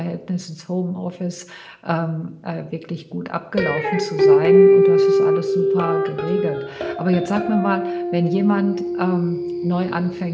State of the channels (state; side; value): identical; both; correlation 1.00